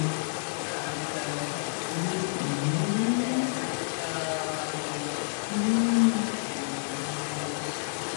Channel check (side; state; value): right; silent; digital silence